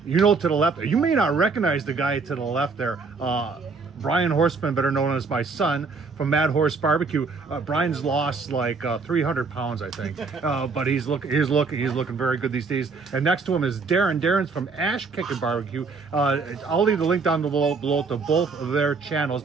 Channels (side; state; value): left; quieter; 4.5 dB